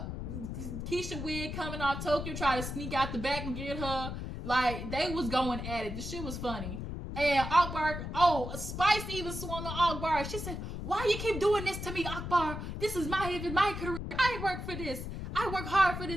wig coming off, Tokyo try to sneak out the back and get her. Like, they was going at it. The shit was funny. And Akbar, Spice even swung on Akbar. She said, why you keep doing this to me, Akbar? This is my career. I work for this. I work hard for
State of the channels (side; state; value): left; noise; rumble, 6 dB below the sound